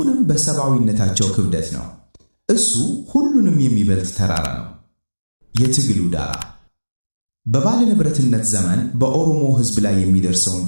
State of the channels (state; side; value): inverted; both; correlation -1.00